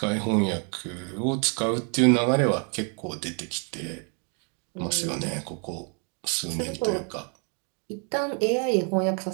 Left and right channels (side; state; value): left; quieter; 38.4 dB